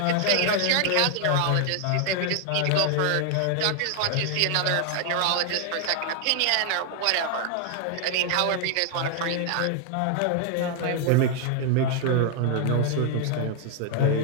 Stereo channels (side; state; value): both; different; correlation 0.00